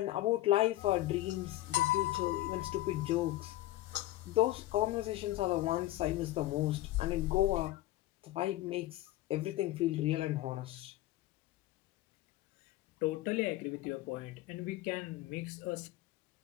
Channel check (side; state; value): right; quieter; 16.1 dB